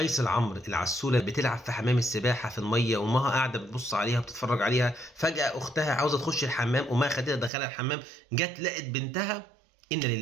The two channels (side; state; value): left; drops out; at 7.5 s